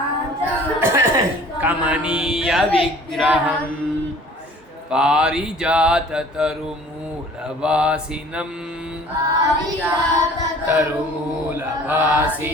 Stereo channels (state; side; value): normal; both; correlation 0.50